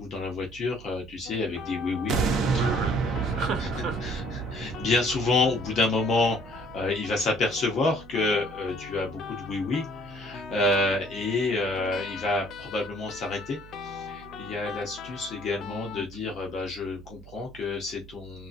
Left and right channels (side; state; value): right; noise; hum, 19 dB below the sound